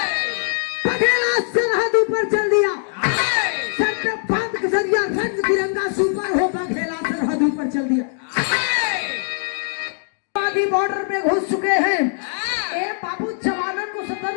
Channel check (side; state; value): right; silent; digital silence